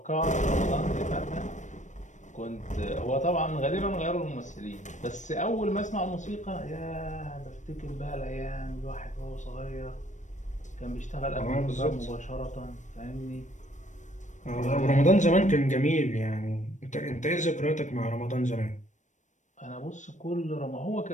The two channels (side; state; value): right; late; 0.35 ms